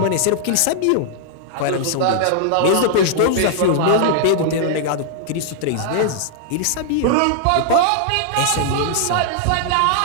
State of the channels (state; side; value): different; both; correlation -0.01